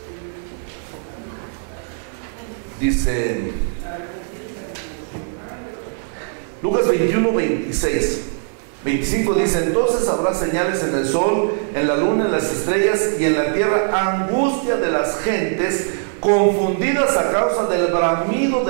Dice Lucas 21, 26. 25 dice: entonces habrá señales en el sol, en la luna, en las estrellas y en la tierra, angustia de las gentes, confundidas a causa del bramido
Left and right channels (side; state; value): left; silent; 65 dB below the other